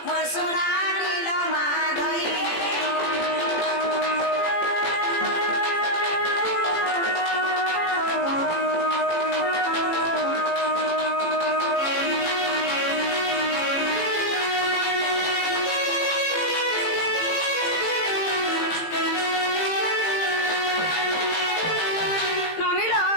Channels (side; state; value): right; late; 17 ms